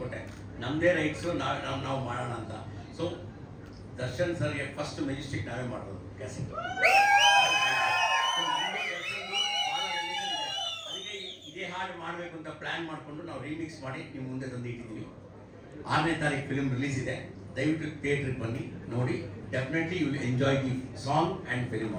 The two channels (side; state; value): both; identical; correlation 1.00